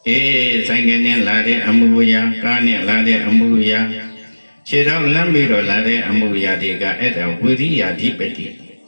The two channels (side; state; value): both; inverted; correlation -1.00